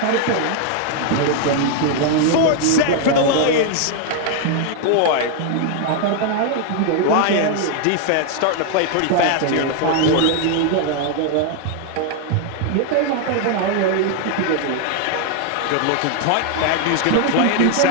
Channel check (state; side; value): different; both; correlation 0.00